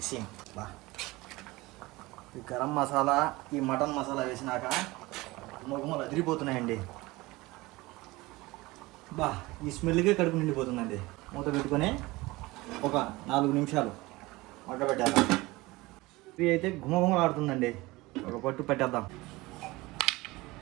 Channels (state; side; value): quieter; left; 21.1 dB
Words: ఈ గరం మసాలా, ఈ మటన్ మసాలా వేసినాక మొగమలు అదిరిపోతున్నాయండి. ఈ స్మెల్కే కడుపు నిండిపోతుందండి. మూత పెట్టుకొని ఒక 4 నిమిషాలు మగ్గబెట్టేద్దాం. కర్రీ అయితే గుమగుమలాడుతుందండి. ఒక పట్టు పెట్టేద్దాం.